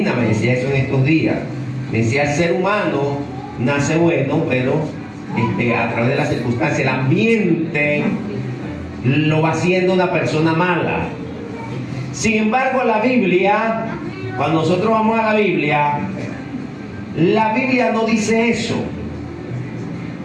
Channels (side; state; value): both; identical; correlation 1.00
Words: me decía eso en estos días. Me decía: el ser humano nace bueno, pero a través de la circunstancia, el ambiente lo va haciendo una persona mala. Sin embargo, la Biblia, cuando nosotros vamos a la Biblia no dice eso,